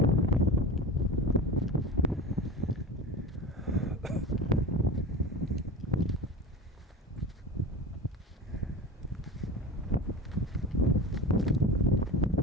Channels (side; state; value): both; normal; correlation 0.31